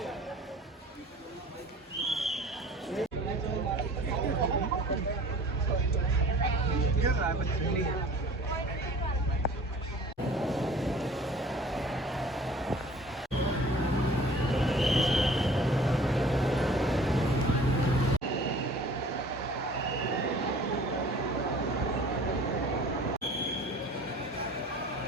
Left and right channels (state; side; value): normal; both; correlation 0.47